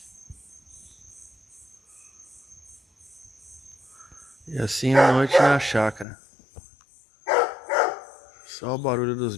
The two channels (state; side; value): drops out; right; at 6.1 s